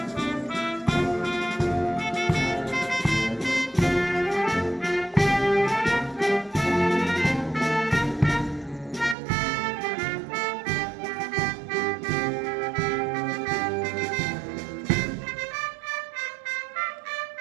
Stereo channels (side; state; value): left; drops out; at 9.2 s